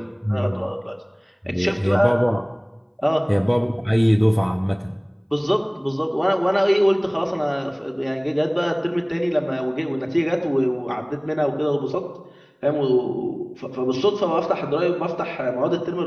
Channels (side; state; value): both; identical; correlation 1.00